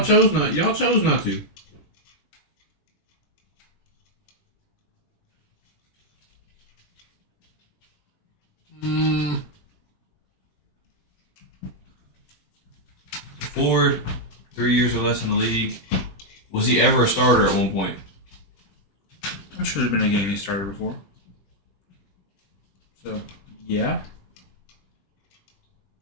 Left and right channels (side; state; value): right; late; 20 ms